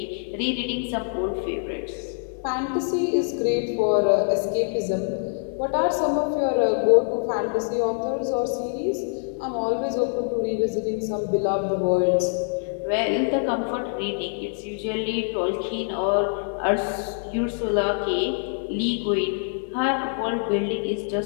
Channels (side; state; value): right; silent; digital silence